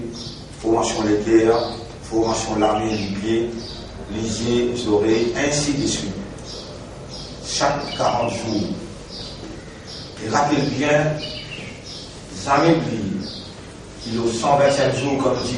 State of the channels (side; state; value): both; identical; correlation 1.00